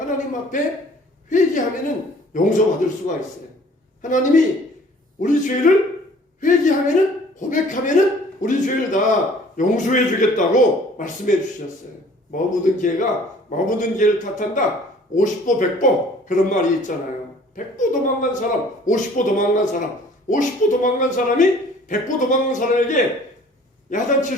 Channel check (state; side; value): normal; both; correlation 0.53